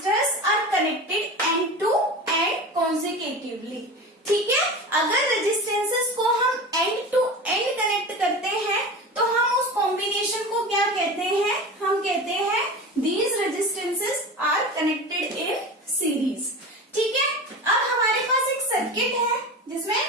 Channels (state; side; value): normal; both; correlation 0.30